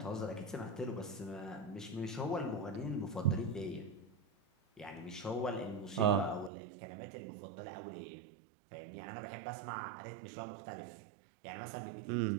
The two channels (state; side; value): drops out; left; at 6.5 s